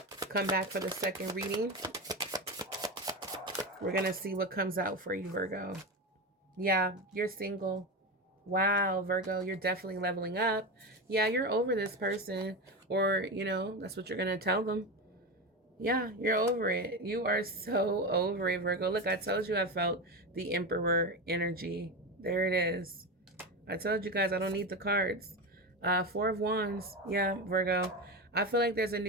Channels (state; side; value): normal; both; correlation 0.19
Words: come back for the second reading. We're going to see what comes out for you, Virgo. Yeah, you're single. Wow, Virgo, you're definitely leveling up. Yeah, you're over this person, or, that's what you're going to tell them. Yeah, you're over it. You are so over it, Virgo. Look, I told you I felt the Emperor energy. There it is. I told you guys I don't need the cards. Four of Wands. Yeah, Virgo. I feel like there's a